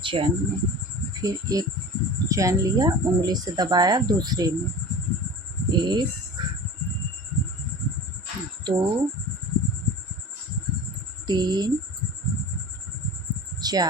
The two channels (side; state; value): both; normal; correlation 0.36